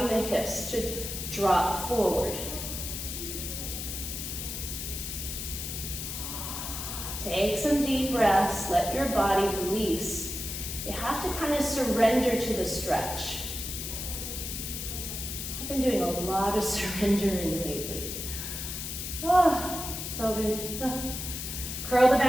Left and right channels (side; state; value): left; noise; hiss, 6 dB below the sound